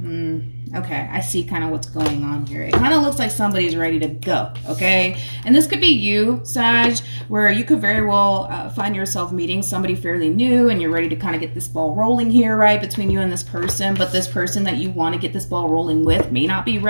Okay, I see kind of what's going on here. It kind of looks like somebody's ready to go, okay? And this could be you, Sag, where you could very well find yourself meeting somebody fairly new and you're ready to kind of get this ball rolling here, right, between you and this person. But this person that you want to get this ball rolling with may not be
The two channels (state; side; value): inverted; both; correlation -1.00